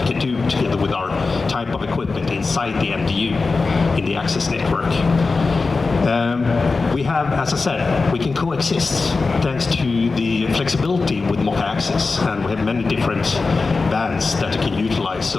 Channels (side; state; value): right; quieter; 4.1 dB